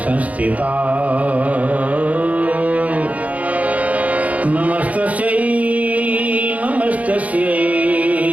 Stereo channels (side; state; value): left; late; 0.070 ms